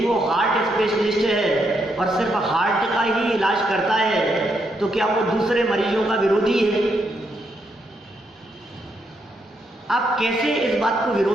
हार्ट स्पेशलिस्ट है और सिर्फ हार्ट का ही इलाज करता है, तो क्या वो दूसरे मरीजों का विरोधी है? आप कैसे इस बात को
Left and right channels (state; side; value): normal; both; correlation 0.78